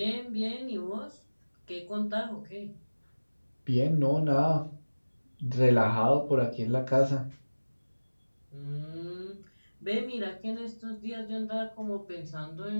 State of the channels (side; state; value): both; inverted; correlation -1.00